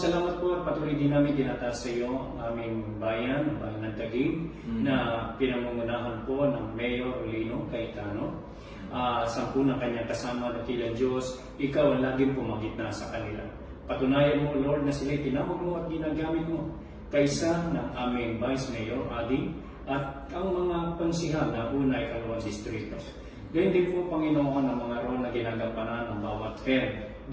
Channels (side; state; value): both; identical; correlation 1.00